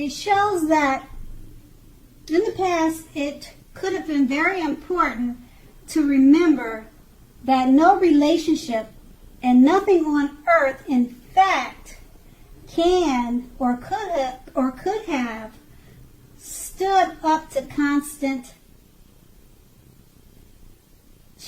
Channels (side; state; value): both; identical; correlation 1.00